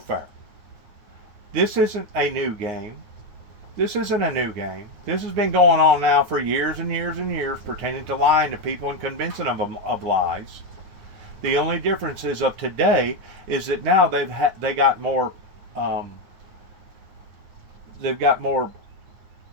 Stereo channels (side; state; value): left; late; 9.3 ms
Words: This isn't a new game. This isn't a new game. This has been going on now for years and years and years, pertaining to lying to people and convincing them of lies. The only difference is of today is that now they got more